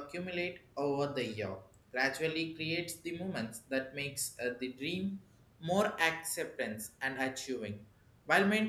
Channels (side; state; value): both; identical; correlation 1.00